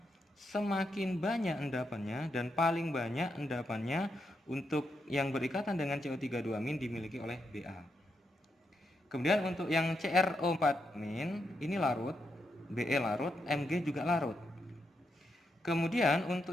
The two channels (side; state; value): both; normal; correlation 0.82